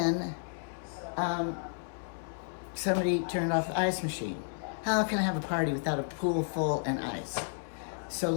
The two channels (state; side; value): silent; right; 56 dB below the other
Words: somebody turned off the ice machine. How can I have a party without a pool full and ice? So